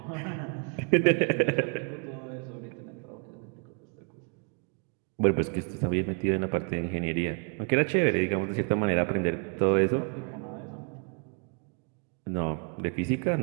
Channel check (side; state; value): left; quieter; 37.7 dB